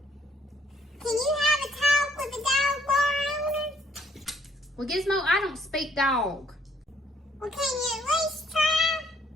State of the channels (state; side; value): normal; both; correlation 0.65